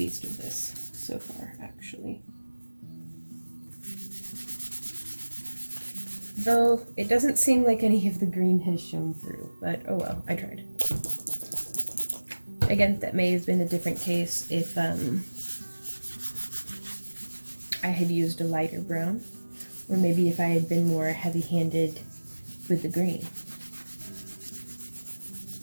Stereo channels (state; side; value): inverted; both; correlation -1.00